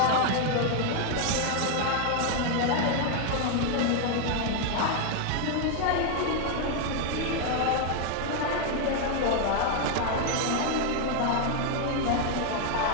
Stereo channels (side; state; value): both; different; correlation 0.00